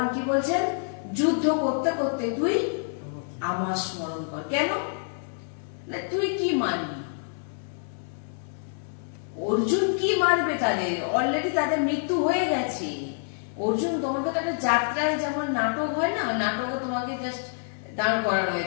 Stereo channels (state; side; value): silent; right; digital silence